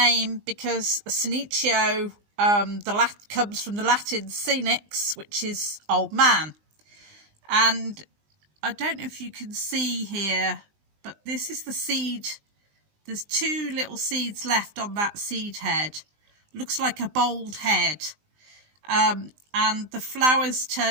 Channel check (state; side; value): late; left; 20 ms